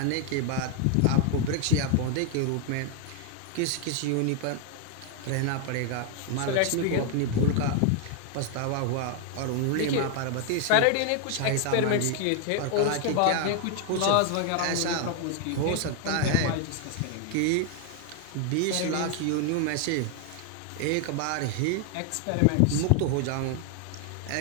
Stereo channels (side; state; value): both; different; correlation 0.00